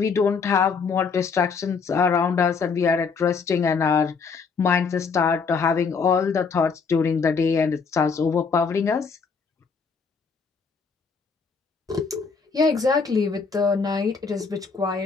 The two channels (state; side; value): quieter; right; 5.3 dB